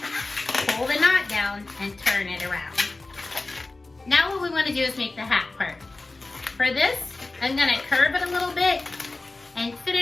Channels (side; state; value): right; quieter; 3.3 dB